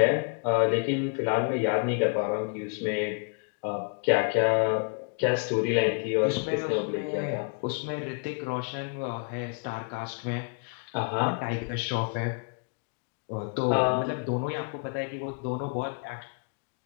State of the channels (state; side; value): quieter; right; 38.7 dB